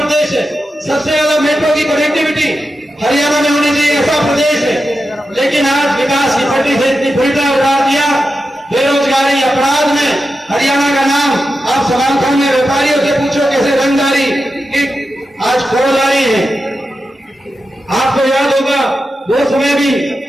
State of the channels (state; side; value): normal; both; correlation 0.90